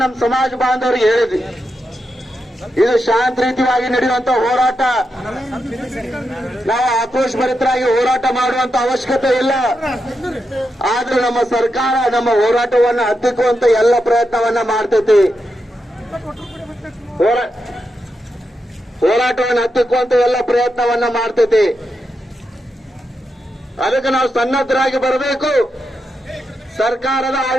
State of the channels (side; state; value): both; normal; correlation 0.86